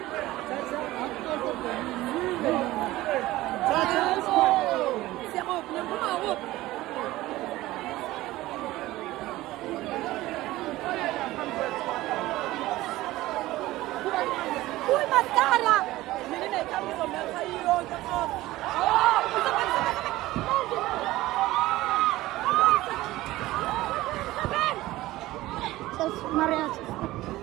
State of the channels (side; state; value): left; quieter; 17.3 dB